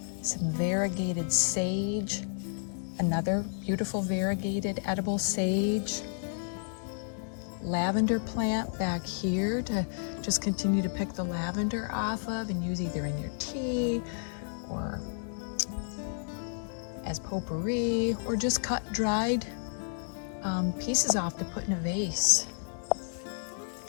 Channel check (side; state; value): right; silent; digital silence